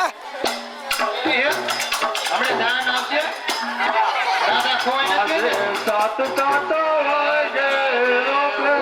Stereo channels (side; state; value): both; identical; correlation 1.00